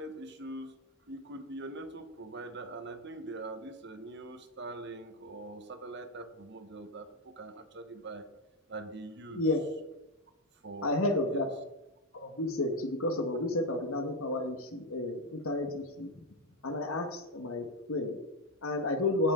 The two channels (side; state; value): both; normal; correlation 0.07